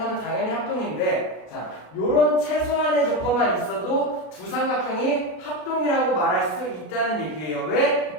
당연히 합동인데, 자, 요런 최소한의 조건만 있어도 두 삼각형이 합동이라고 말할 수 있다는 얘기예요.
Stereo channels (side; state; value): right; late; 33 ms